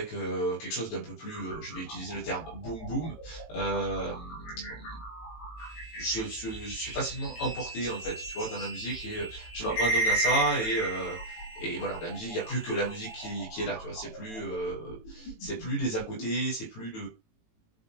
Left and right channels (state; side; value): late; right; 18 ms